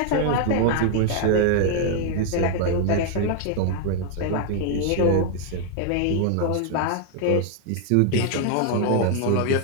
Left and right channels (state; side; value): different; both; correlation 0.00